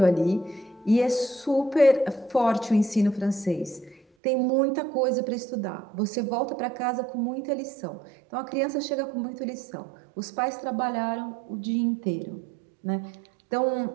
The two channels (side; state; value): left; drops out; at 4.0 s